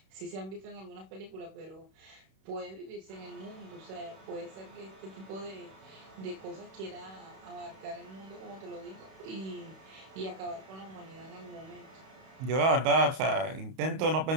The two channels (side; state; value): left; late; 31 ms